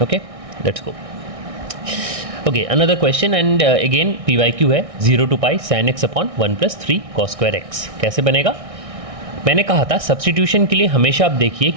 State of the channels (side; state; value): left; late; 1.6 ms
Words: Okay, let's go. Okay, another question and again P Y Q है 0 to pi sine x upon 1 + 3 cos square x. कैसे बनेगा, मैंने कहा था सब्सटीट्यूशन के लिए हमेशा आप देखिए